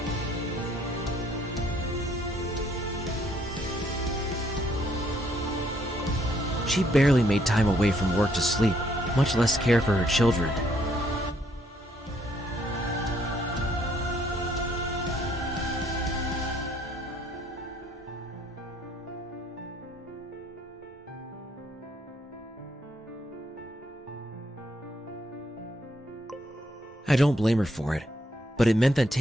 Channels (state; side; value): normal; both; correlation 0.69